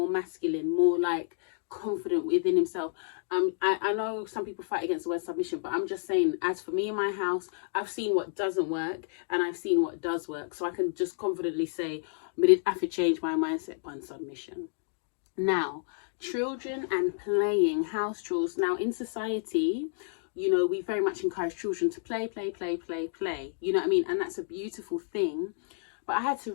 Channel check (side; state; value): right; silent; digital silence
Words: masculine, more like confident within himself. I know some people fight against the word submission, but I'm just saying, as for me in my house, I've seen what doesn't work and I've seen what does work. So I can just confidently say, but it have to change my mindset on submission. Now, children and playing, house chores. Now, in society, you know, we very much encourage children to play. You know what I mean? And that's a beautiful thing. But I had